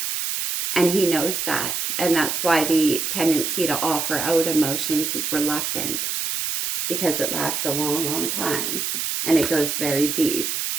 And he knows that. And that's why the tendency to offer out emotions is reluctant. Because it lasts a long, long time. And it goes very deep.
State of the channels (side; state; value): right; noise; hiss, 1 dB below the sound